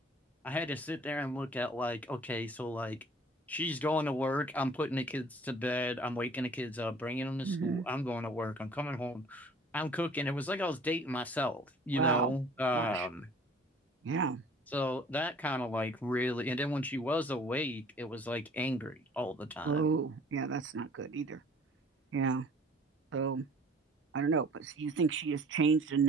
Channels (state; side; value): normal; both; correlation 0.52